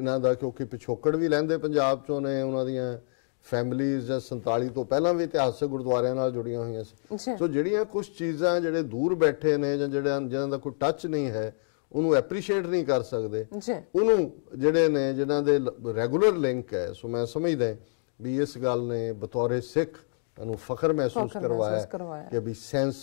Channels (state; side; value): silent; right; digital silence